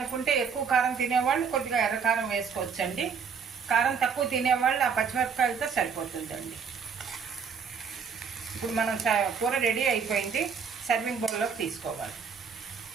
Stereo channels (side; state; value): left; quieter; 6.2 dB